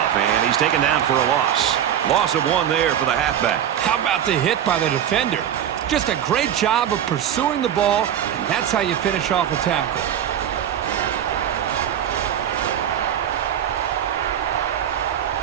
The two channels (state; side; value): quieter; left; 9.9 dB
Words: and he's taken down for a loss. Loss of 1 there for the halfback. How about the hit by the defender? Just a great job of pursuing the ball, and that's how you finish off a tackle.